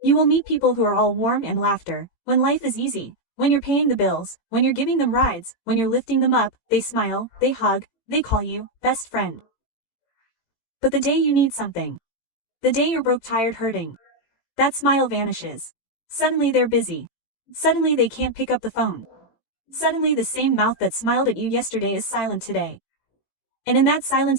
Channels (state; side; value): late; right; 18 ms